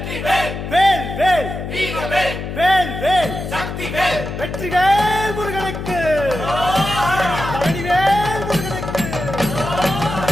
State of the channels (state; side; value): noise; left; hum, 6 dB below the sound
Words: வேல் வேல் வீரவேல், வேல் வேல் சக்திவேல், வெற்றிவேல் முருகனுக்கு, பழனிவேல் முருகனுக்கு.